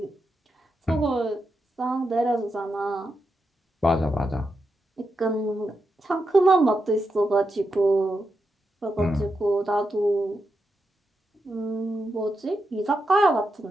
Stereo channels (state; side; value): normal; both; correlation 0.86